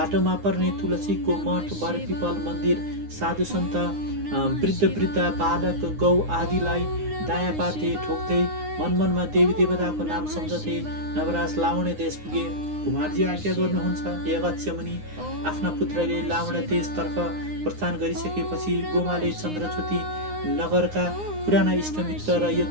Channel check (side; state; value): left; late; 9.7 ms